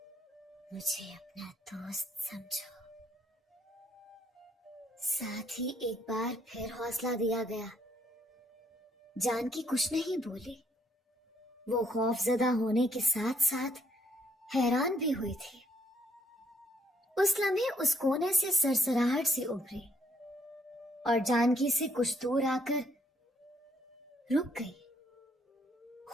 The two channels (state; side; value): normal; both; correlation 0.68